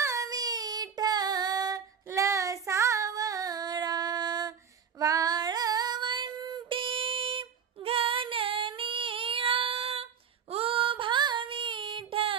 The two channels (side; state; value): left; quieter; 7.2 dB